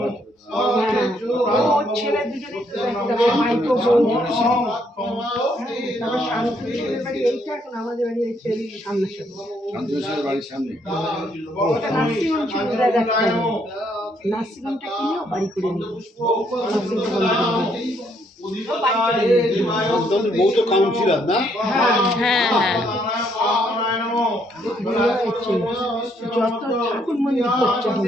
ও ছেলে দুজনে একটা মাইক্রো বোন তারপর শান্তনু ছেলের বাড়ি এইটা এখন আমাদের বাড়ি হচ্ছে সামনাসামনি শান্তনুর বাড়ির সামনে ওটা নার্সিংহোম ছিল দাদা নার্সিংহোমটা কিনেও বাড়ি করে নিই নার্সিংহোম বউ তো কাউন্সিলর না? হ্যাঁ হ্যাঁ যত ঠাকুর মন্দির করছে এখন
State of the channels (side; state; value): both; normal; correlation 0.71